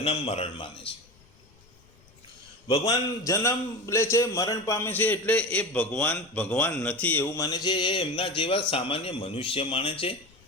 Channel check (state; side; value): noise; left; rumble, 29 dB below the sound